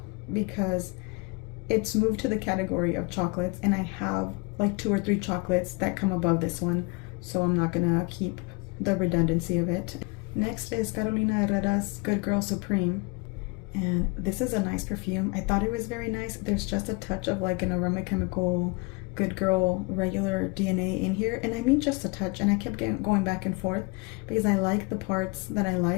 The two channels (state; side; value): quieter; right; 28.6 dB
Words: because it's moved to the category of chocolates, and I have like 2 or 3 chocolates that come above this one, so I'm not gonna keep the redundancy of it. Next is Carolina Herrera's Good Girl Supreme, and this is a nice perfume. I thought it was very nice. There's just a touch of like an aroma chemical Good Girl regular DNA in here, and I mean just a touch, and I kept going back and forth because I like the parts that I